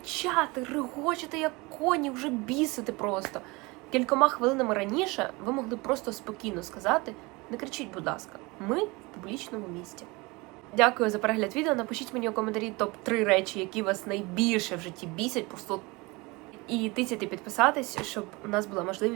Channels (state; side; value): quieter; left; 24.7 dB